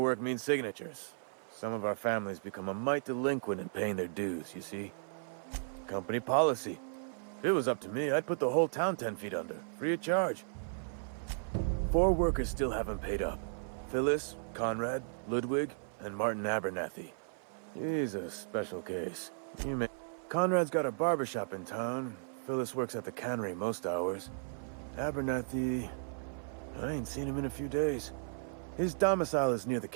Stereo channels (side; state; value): left; silent; 54 dB below the other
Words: means signatures. Some of our families become a mite delinquent in paying their dues, you see? Company policy. If it was up to me, I'd put the whole town 10 feet under, free of charge. 4 workers still haven't paid up. Phyllis, Conrad, Ludwig, and Martin Abernathy. He's a special case. Conrad's got a barbershop in town. Phyllis works at the cannery most hours. Abernathy... I ain't seen him in a few days. His domicile is near the